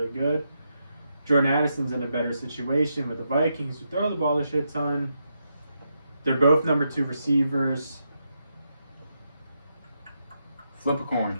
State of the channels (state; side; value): inverted; both; correlation -0.83